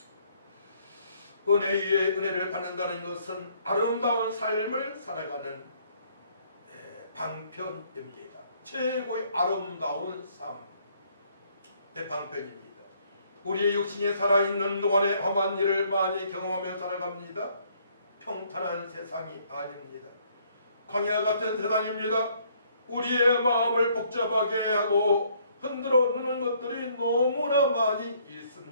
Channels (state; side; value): inverted; both; correlation -0.65